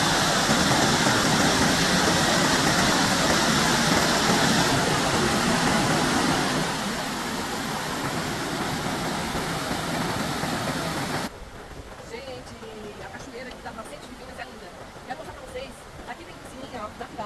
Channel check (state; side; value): identical; both; correlation 1.00